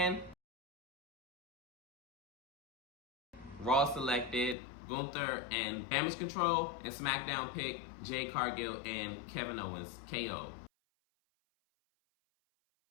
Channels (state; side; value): drops out; right; at 4.5 s